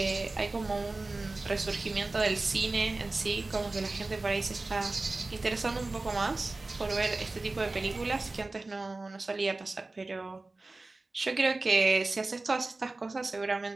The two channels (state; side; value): quieter; left; 3.2 dB